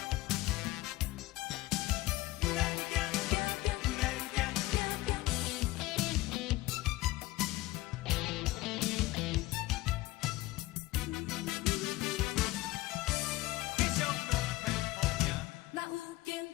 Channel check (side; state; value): right; quieter; 18.2 dB